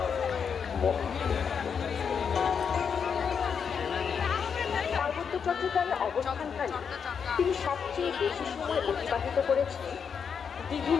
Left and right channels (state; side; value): quieter; right; 6.7 dB